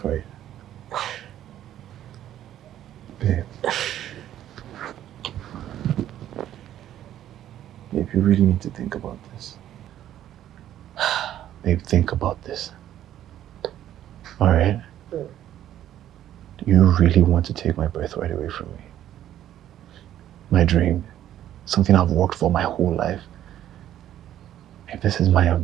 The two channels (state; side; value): quieter; left; 11.8 dB